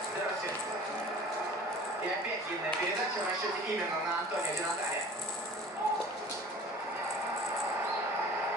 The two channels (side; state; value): both; normal; correlation 0.44